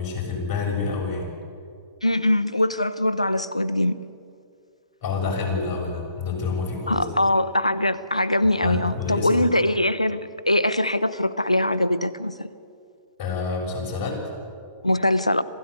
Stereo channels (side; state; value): both; inverted; correlation -0.74